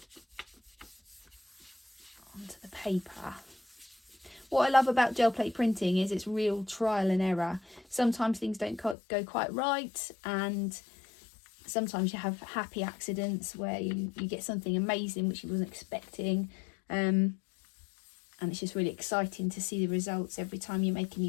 onto the paper. What I love about gel plate printing is it's real trial and error. Sometimes things don't go quite right, and sometimes you have happy accidents where you get something amazing which you wasn't expecting. And it's just really exciting to see the results every time you make a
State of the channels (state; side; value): drops out; right; at 9.0 s